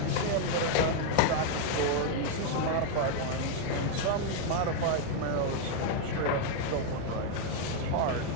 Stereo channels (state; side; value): different; both; correlation 0.00